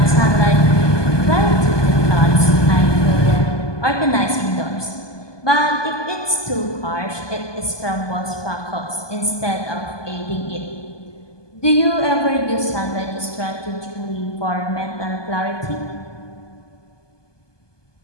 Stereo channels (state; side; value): late; right; 1.2 ms